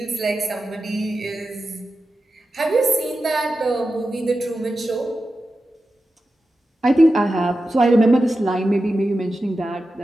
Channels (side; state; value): both; normal; correlation 0.92